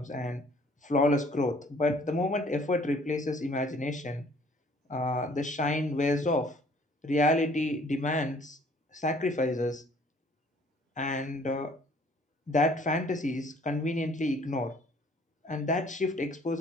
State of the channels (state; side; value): normal; both; correlation 0.57